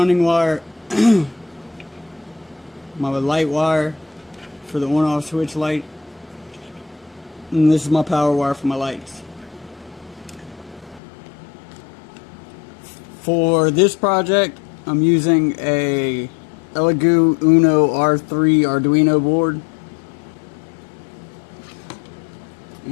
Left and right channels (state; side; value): drops out; right; at 11.0 s